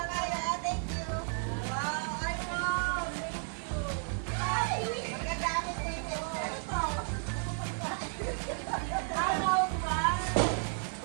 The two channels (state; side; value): silent; left; 56 dB below the other